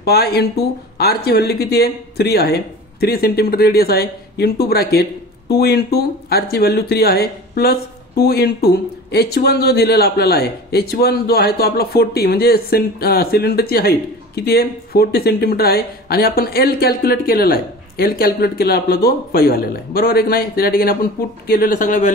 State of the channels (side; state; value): both; normal; correlation 0.37